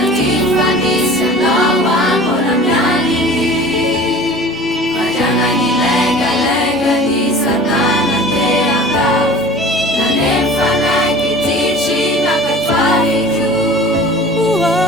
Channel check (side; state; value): both; normal; correlation 0.42